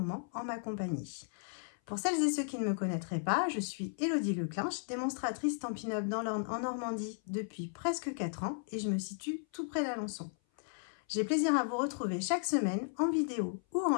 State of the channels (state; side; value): silent; right; 54 dB below the other